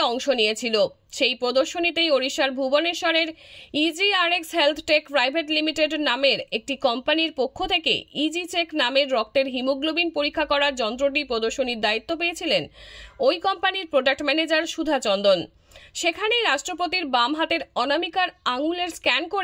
অংশ নিয়েছিল। সেই প্রদর্শনীতেই ওড়িশার ভুবনেশ্বরের EGRX health tech private limited নামের একটি কোম্পানির পক্ষ থেকে ইজি চেক নামের রক্তের হিমোগ্লোবিন পরীক্ষা করার যন্ত্রটি প্রদর্শনীর দায়িত্ব পেয়েছিলেন ওই কোম্পানির প্রোডাক্ট ম্যানেজার সুধাচন্দন। সেখানেই রাষ্ট্রপতির বাম হাতের অনামিকার আঙুলের স্ক্যান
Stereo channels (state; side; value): identical; both; correlation 1.00